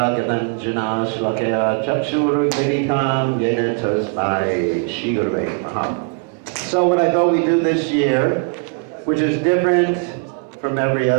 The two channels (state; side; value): quieter; left; 38.3 dB